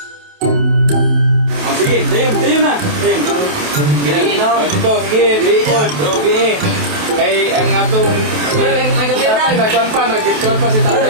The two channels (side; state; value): left; late; 28 ms